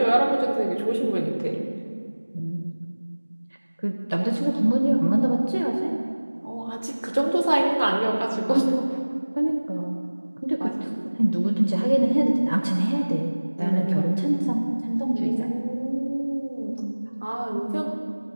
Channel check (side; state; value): both; inverted; correlation -1.00